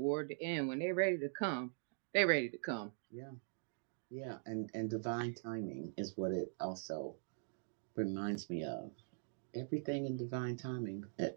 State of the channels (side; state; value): left; silent; digital silence